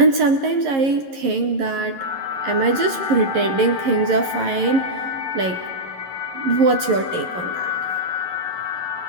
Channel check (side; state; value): left; late; 11 ms